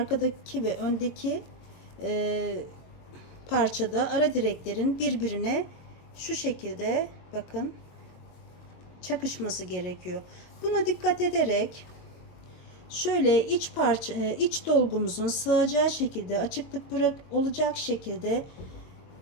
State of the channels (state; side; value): late; right; 22 ms